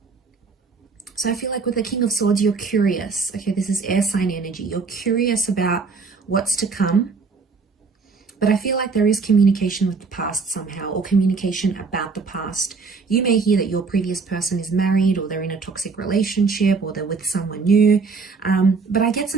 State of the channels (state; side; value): quieter; left; 4.7 dB